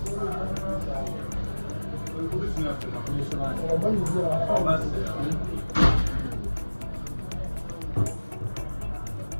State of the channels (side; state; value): both; inverted; correlation -1.00